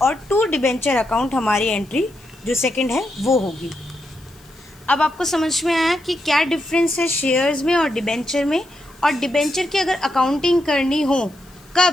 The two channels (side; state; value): left; noise; hiss, 28 dB below the sound